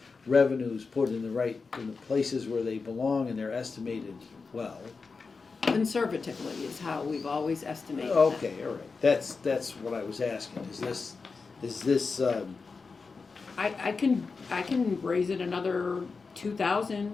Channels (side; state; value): right; quieter; 4.6 dB